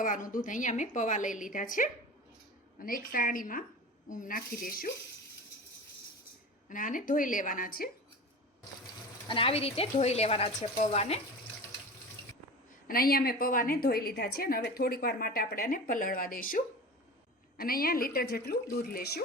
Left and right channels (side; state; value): both; normal; correlation 0.33